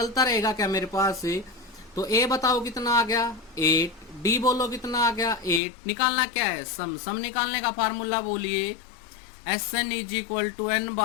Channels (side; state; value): right; drops out; at 5.6 s